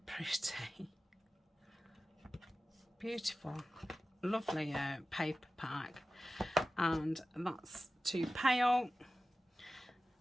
pretty. Beautiful. Lovely paper pack. And that's too pale.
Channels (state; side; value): normal; both; correlation 0.95